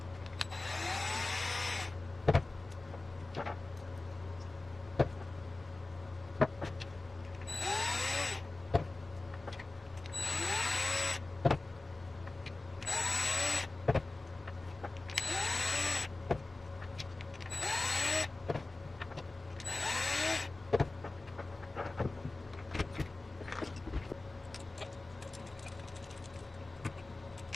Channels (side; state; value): right; quieter; 3.2 dB